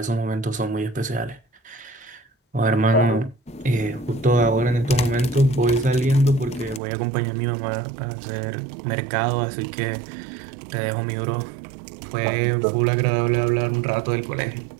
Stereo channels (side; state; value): left; drops out; at 6.8 s